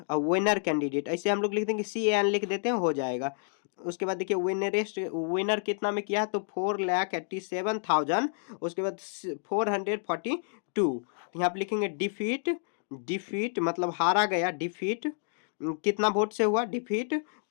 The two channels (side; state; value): right; silent; digital silence